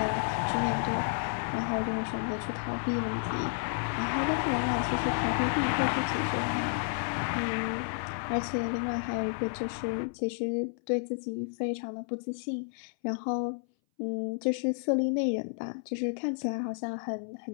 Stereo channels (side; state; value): right; silent; 57 dB below the other